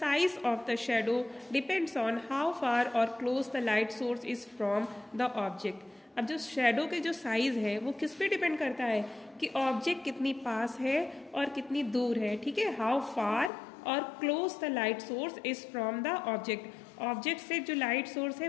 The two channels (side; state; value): right; drops out; at 13.5 s